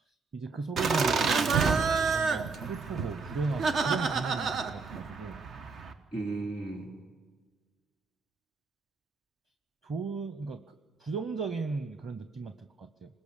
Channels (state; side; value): quieter; left; 4.4 dB